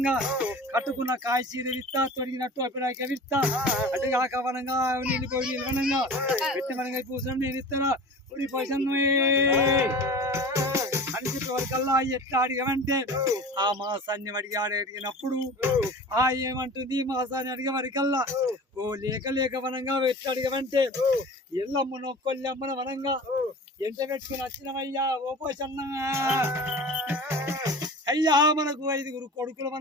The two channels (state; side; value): normal; both; correlation 0.37